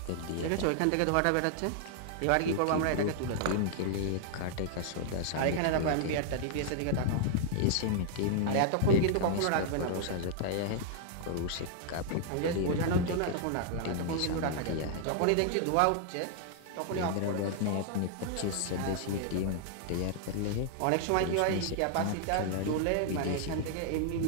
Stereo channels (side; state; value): both; different; correlation 0.00